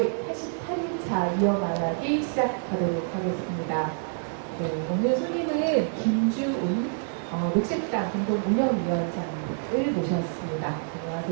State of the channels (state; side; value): silent; left; digital silence